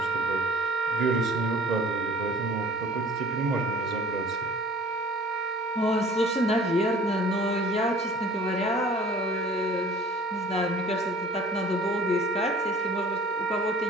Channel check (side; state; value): both; normal; correlation 0.48